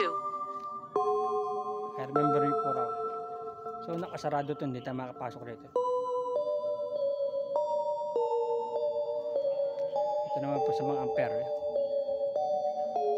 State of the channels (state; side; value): identical; both; correlation 1.00